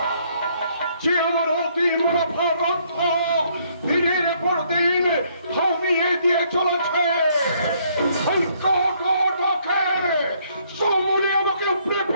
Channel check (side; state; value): both; inverted; correlation -0.68